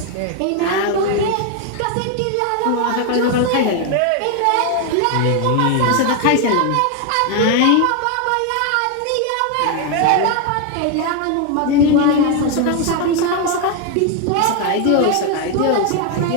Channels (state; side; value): different; both; correlation 0.01